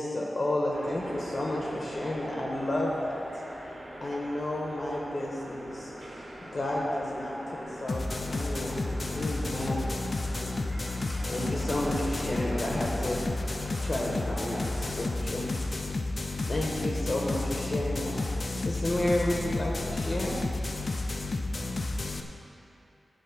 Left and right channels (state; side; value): normal; both; correlation 0.95